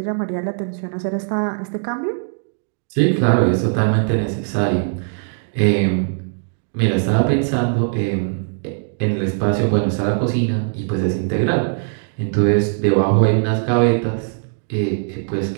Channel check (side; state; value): left; silent; digital silence